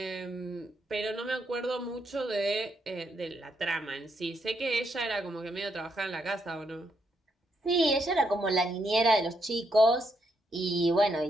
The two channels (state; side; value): normal; both; correlation 0.78